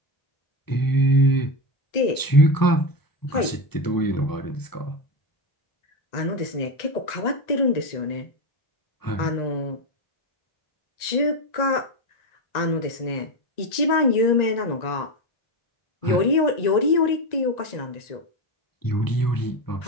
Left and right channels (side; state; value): right; late; 1.9 ms